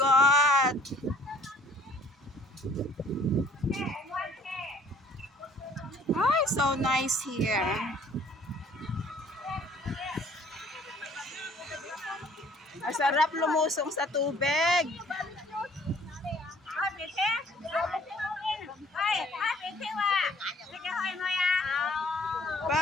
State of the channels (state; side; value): normal; both; correlation 0.57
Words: Ay, so nice here. Masarap lumusong sa tubig.